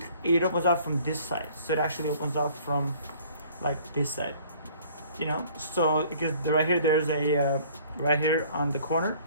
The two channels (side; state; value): both; inverted; correlation -0.54